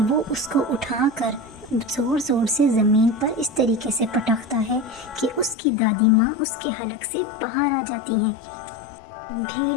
وہ اس کو اٹھا کر زور زور سے زمین پر اس طریقے سے پٹکتا ہے کہ اس کی دادی ماں اس کے حلق سے باہر آ جاتی ہیں۔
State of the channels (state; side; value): drops out; right; at 5.6 s